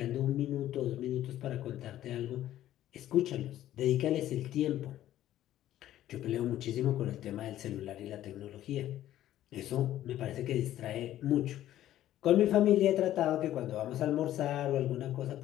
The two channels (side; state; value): right; quieter; 13.0 dB